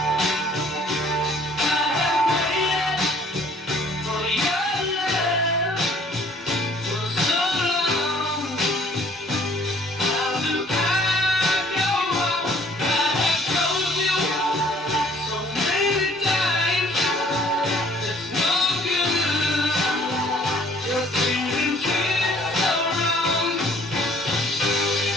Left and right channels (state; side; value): normal; both; correlation 0.58